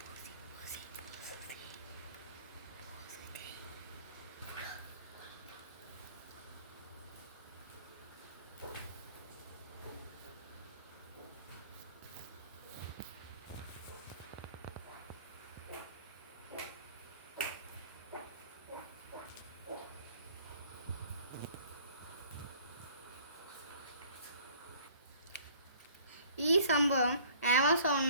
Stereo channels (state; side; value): inverted; both; correlation -0.54